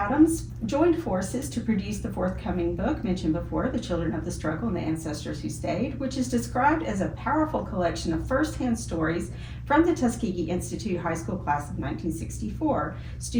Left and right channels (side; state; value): both; identical; correlation 1.00